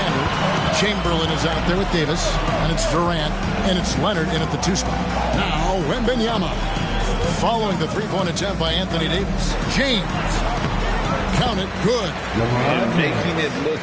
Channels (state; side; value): identical; both; correlation 1.00